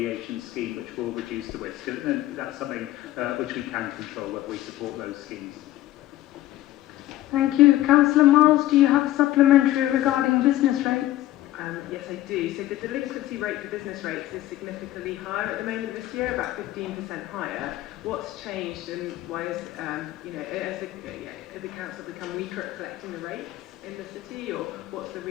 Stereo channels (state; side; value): quieter; right; 15.0 dB